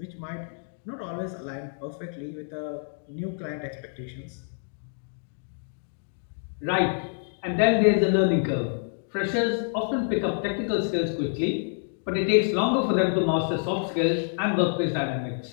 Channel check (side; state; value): right; silent; digital silence